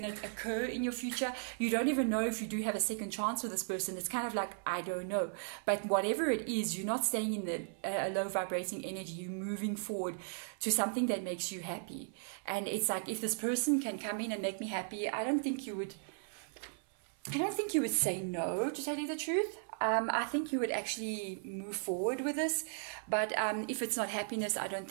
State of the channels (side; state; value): left; silent; 54 dB below the other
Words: to occur in your future. You don't even know if you do have a second chance with this person. It's kind of like, I don't know. But whatever it is, you're not staying in the low vibrating energy. You're moving forward to something that makes you happy. And it's like, if this person can come in and make me happy, I don't think you would say no, to tell you the truth. I think you would actually move forward with this, but if it's not happiness, I don't